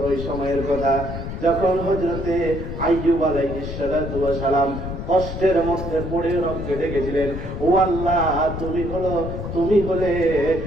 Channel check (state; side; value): noise; left; rumble, 6 dB below the sound